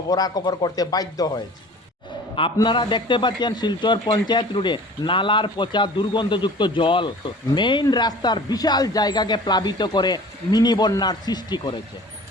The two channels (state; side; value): normal; both; correlation 0.44